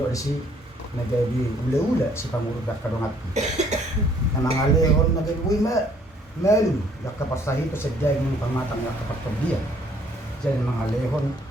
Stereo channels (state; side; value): normal; both; correlation 0.62